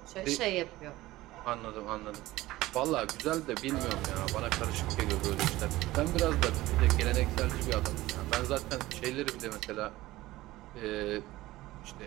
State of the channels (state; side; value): quieter; left; 17.4 dB